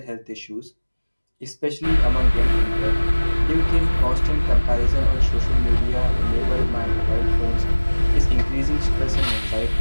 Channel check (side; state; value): both; inverted; correlation -1.00